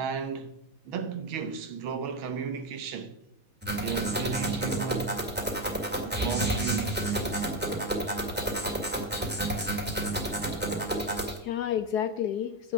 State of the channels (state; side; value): normal; both; correlation 0.11